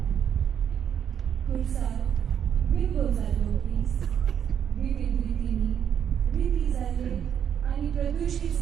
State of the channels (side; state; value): left; quieter; 8.6 dB